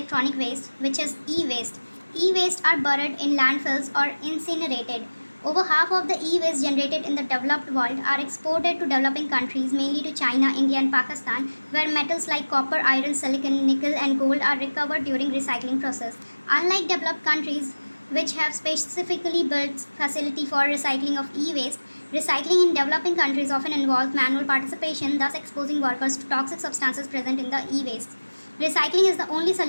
waste, which is e-waste. E-waste are buried in landfills or incinerated. Over half of the e-waste generated in the developed world are exported to developing countries, mainly to China, India, and Pakistan, where metals like copper, iron, silicon, nickel, and gold are recovered during recycling process. Unlike developed countries, which have specifically built facility for recycling of e-waste, recycling in developing countries often involves manual participation, thus exposing workers to toxic substances present in the e-waste. Recycling is the only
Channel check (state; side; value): inverted; both; correlation -1.00